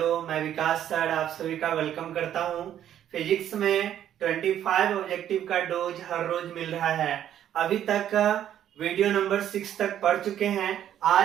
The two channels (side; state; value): left; quieter; 10.7 dB